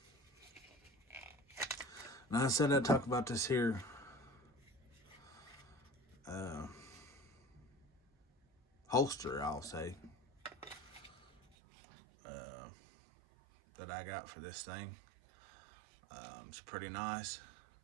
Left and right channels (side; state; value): left; drops out; at 11.6 s